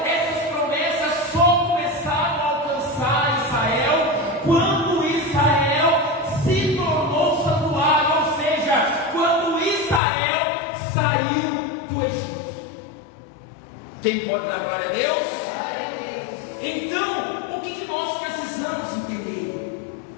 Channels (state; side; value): drops out; right; at 10.0 s